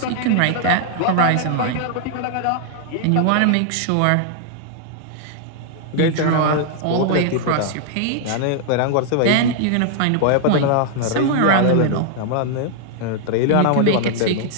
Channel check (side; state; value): both; different; correlation -0.01